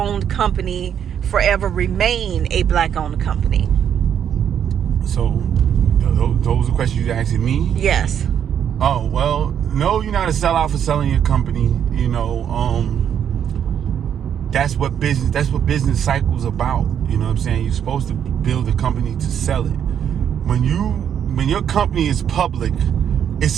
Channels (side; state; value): left; quieter; 8.8 dB